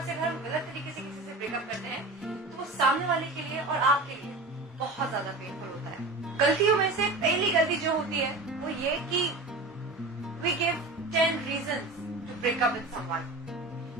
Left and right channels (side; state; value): left; quieter; 3.1 dB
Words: से अगर हम गलत तरीके से किसी से ब्रेकअप करते हैं तो वो सामने वाले के लिए और आपके लिए बहुत ज्यादा पेनफुल होता है। गलतियों में से पहली गलती जो होती है वो ये कि we give 10 reasons to break up with someone.